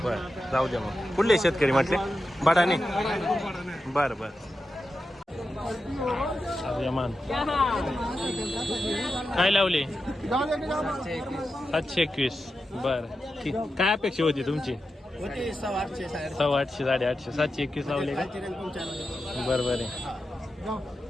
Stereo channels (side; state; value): both; normal; correlation 0.90